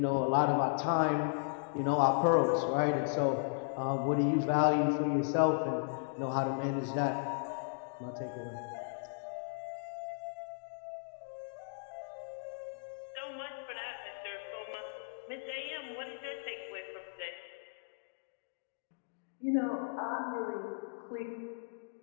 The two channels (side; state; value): right; silent; digital silence